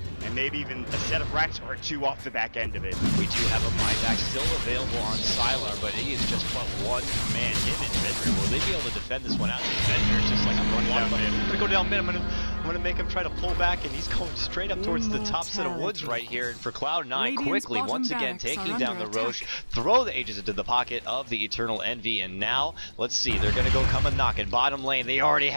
and maybe even a set of racks or 2 off the back end of it. We do have a buyback still available on Sylar, but he is just but 1 man. Him and Fenrir. Will they be able to defend this one out? Fenrir just like, I'm going down mid. I'm going to go down mid. I'm going to make him try to pull back, and he's going straight up towards the top set of woods right here. And for Cloud9, quickly, once again, taking down the Roche, throw the Aegis into the pocket of the Eternal Envy, and now, let's see, they're going to go come and knock in bottom lane. They already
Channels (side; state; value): both; inverted; correlation -1.00